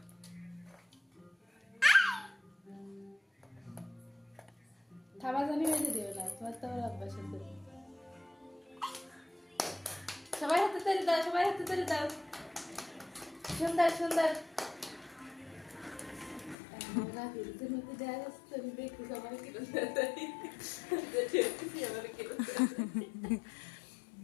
খাবার জানি হয়ে দিও না তোমার তো অভ্যাস আছে সবাই হাতে তালি দাও সবাই হাতে তালি দাও সুন্দর সুন্দর না ভিডিওতে মধ্যে দেয়া যাচ্ছে আমি দেখতে সবাই কি করতে দেখি আমার কি করতে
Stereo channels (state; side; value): drops out; right; at 16.6 s